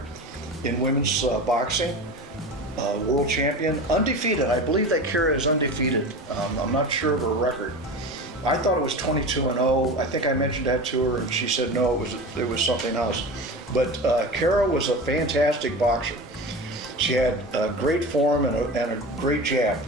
in women's boxing. World champion, undefeated. I believe that Kara is undefeated. I'm not sure of her record. I thought it was 22-0. I think I mentioned that to her, and she said no, it was something else. But Kara was a fantastic boxer. She had great form and a great jab.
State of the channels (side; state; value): both; normal; correlation 0.30